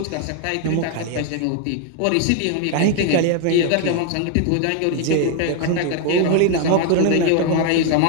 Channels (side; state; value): both; different; correlation 0.01